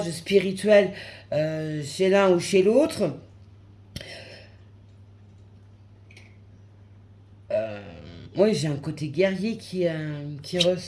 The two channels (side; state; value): both; identical; correlation 1.00